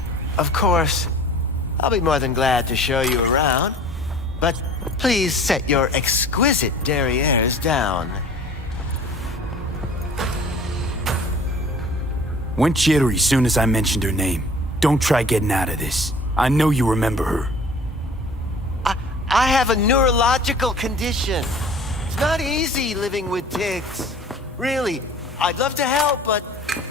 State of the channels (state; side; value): normal; both; correlation 0.46